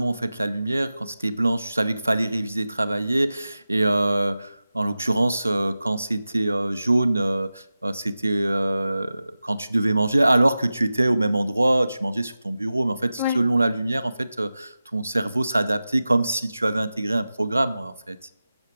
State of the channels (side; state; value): both; inverted; correlation -0.95